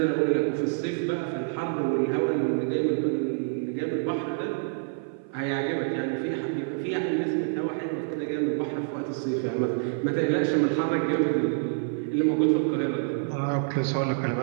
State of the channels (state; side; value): silent; left; 57 dB below the other